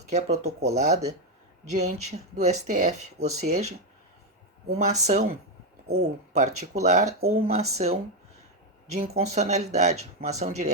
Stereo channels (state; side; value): normal; both; correlation 0.05